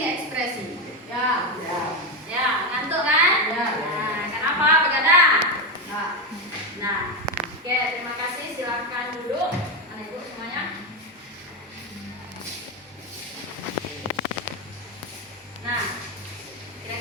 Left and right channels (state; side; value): normal; both; correlation 0.11